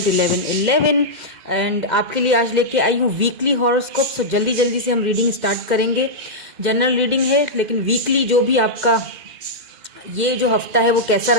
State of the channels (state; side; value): late; left; 2.1 ms